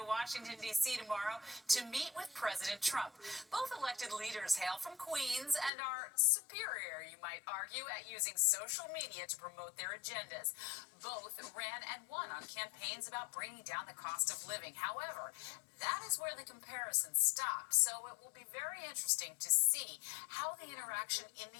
Washington, D.C. tomorrow to meet with President Trump. Both elected leaders hail from Queens and are superior, you might argue, at using social media to promote their agendas. Both ran and won on campaigns about bringing down the cost of living. However, that is where the comparison stops. So it will be very interesting to see how the interaction in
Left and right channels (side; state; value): right; drops out; at 5.7 s